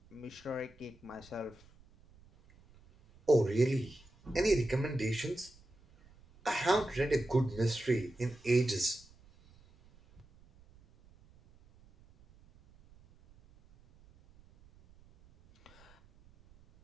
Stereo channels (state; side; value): noise; right; rumble, 27 dB below the sound